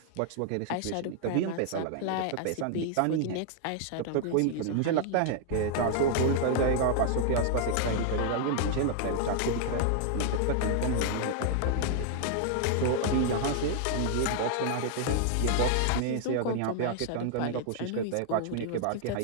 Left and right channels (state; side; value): different; both; correlation 0.00